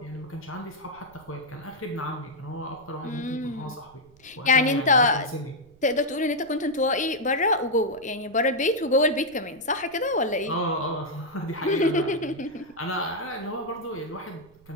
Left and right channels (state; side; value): noise; right; rumble, 28 dB below the sound